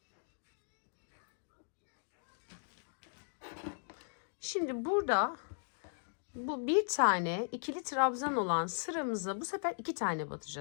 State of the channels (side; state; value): right; silent; digital silence